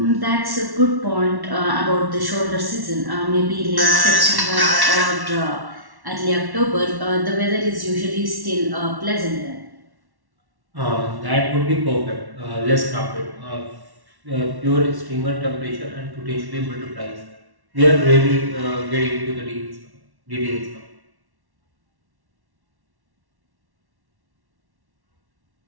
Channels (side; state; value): left; late; 1.1 ms